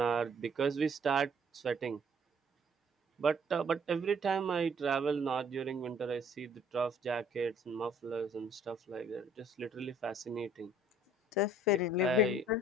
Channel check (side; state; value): both; normal; correlation 0.59